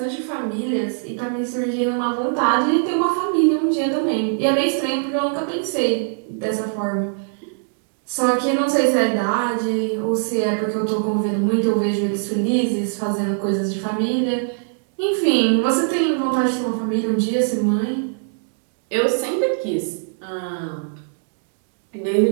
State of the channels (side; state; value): left; silent; digital silence